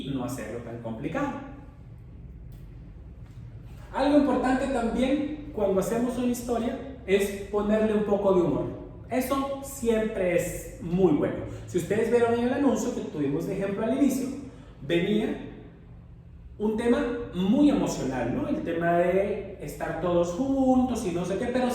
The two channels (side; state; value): both; identical; correlation 1.00